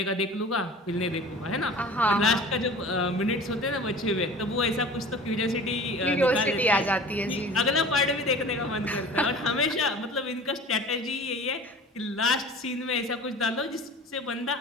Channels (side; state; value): both; normal; correlation 0.40